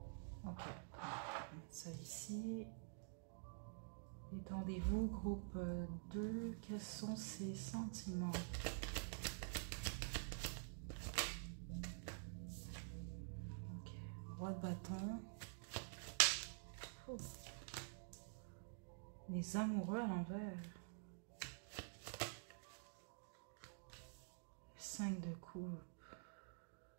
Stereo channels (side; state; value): left; silent; digital silence